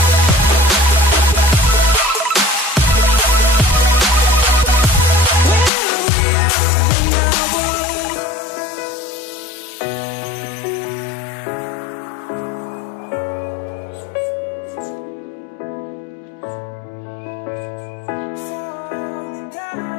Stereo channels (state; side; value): drops out; right; at 5.7 s